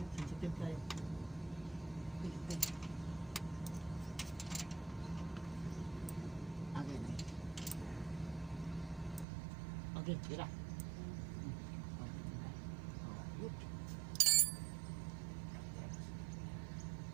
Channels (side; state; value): left; drops out; at 9.2 s